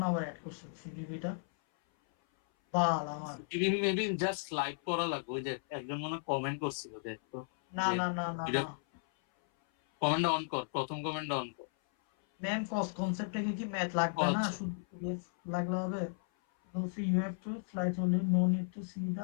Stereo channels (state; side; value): silent; right; 55 dB below the other